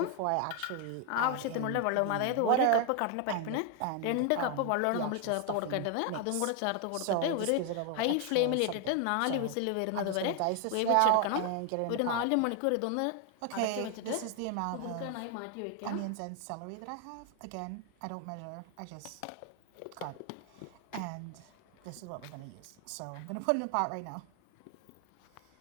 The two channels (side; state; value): both; different; correlation 0.01